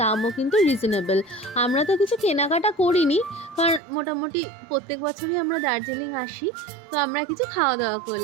দামও কিন্তু রিজনেবল। আমরা তো কিছু কেনাকাটা করিনি, কারণ মোটামুটি প্রত্যেক বছরই আমরা দার্জিলিং আসি, তো আমরা কিছু খাওয়া দাওয়া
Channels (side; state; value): left; drops out; at 3.8 s